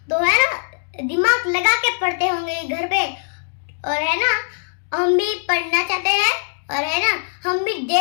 तो है ना दिमाग लगा के पढ़ते होंगे घर पे। और है ना हम भी पढ़ना चाहते हैं, और है ना हम भी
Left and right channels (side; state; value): right; silent; digital silence